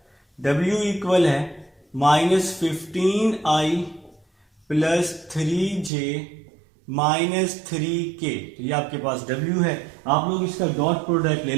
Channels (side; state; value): left; drops out; at 5.9 s